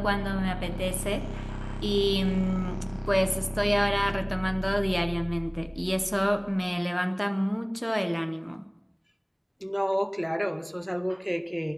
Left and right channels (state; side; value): identical; both; correlation 1.00